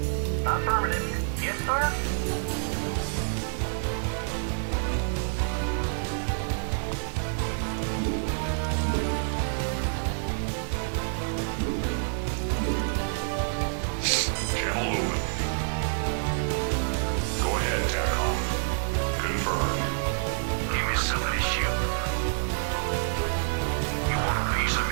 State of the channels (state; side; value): silent; left; digital silence